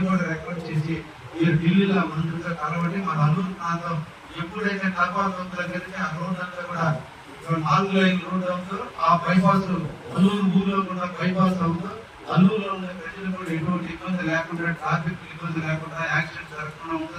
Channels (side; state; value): both; identical; correlation 1.00